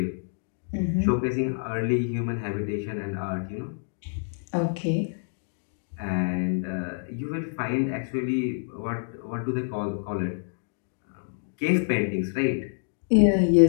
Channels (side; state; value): right; silent; digital silence